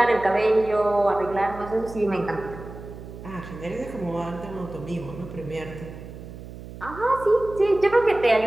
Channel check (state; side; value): noise; right; hum, 13 dB below the sound